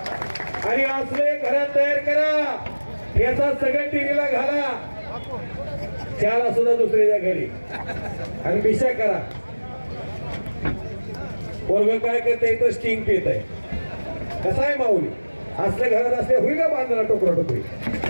आणि असले घरात तयार करा. याचा सगळ्या टीव्हीला घाला, त्याला सुद्धा दुसऱ्याच्या घरी आणि बिशा करा. पोरग काय करते इथं स्टिंग पित आहे. कसा आहे माऊली असल्या घरात असले होईल का बांधला टोकरा टोकरी.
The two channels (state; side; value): inverted; both; correlation -1.00